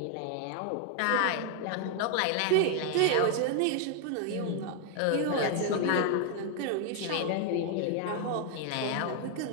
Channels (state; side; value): different; both; correlation 0.00